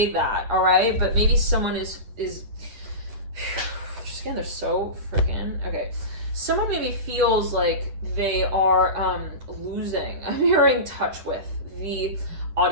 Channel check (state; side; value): late; left; 9.4 ms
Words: that, all right, but maybe someone is just again, they're so freaking, okay. Someone maybe feels like they are losing, I'm hearing touch with the